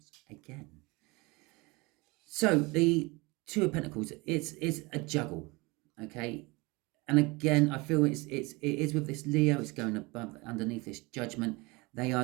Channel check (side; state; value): left; quieter; 25.1 dB